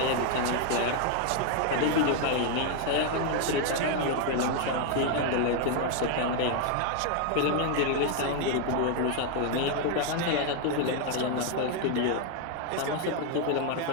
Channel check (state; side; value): different; both; correlation 0.00